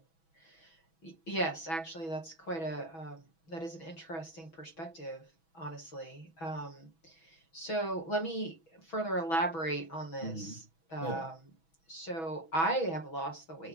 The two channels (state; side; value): late; right; 6.1 ms